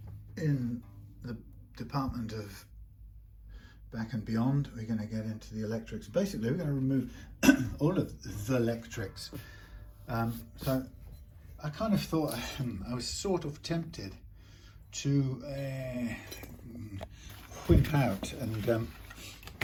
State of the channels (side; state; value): both; identical; correlation 1.00